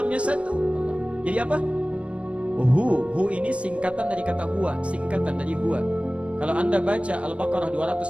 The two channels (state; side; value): late; left; 0.062 ms